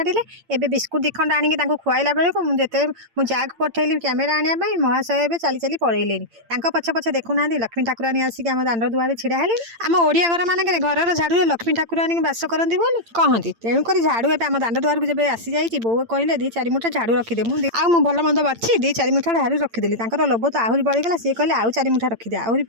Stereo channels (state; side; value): late; left; 8.8 ms